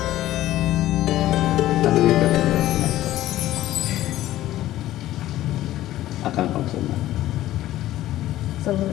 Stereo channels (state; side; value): quieter; right; 14.4 dB